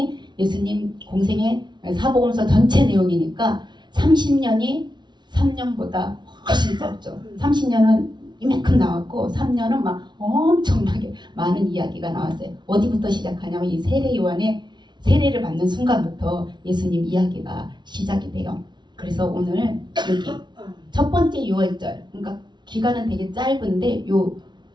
예수님 공생의 사복음서 전체 내용이니까 30년이 3년보다 훨씬 짧죠. 30년은 이만큼 나왔고 3년은 막 엄청나게 많은 이야기가 나왔어요. 어디부터 시작하냐면 이 세례 요한의 세례를 받는 순간부터 예수님 이야기가 시작이 돼요. 그래서 오늘 여기 첫 번째 6월절 그러니까 기간은 되게 짧은데 요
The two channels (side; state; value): left; late; 0.21 ms